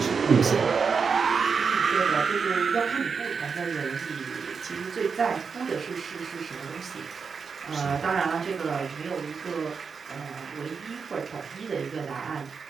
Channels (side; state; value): left; quieter; 5.6 dB